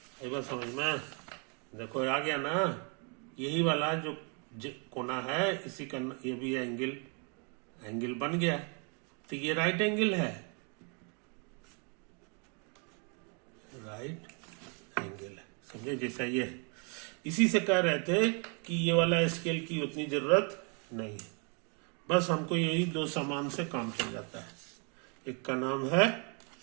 एक बार समझ में देखो आ गया ना? यही वाला जो कोना है इसी का ये भी एंगल बन गया, तो ये राइट एंगल है, राइट एंगल है, समझे? जैसा ये है। इसी से कह रहे थे कि ये वाला स्केल की उतनी जरूरत नहीं है, बस हमको यही 2 सामान से काम चल जाता है। एक का नाम है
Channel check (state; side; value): quieter; left; 36.8 dB